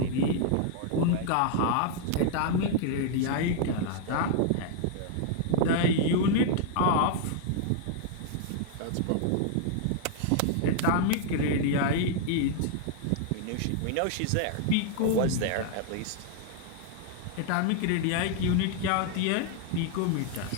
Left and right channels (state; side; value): different; both; correlation 0.00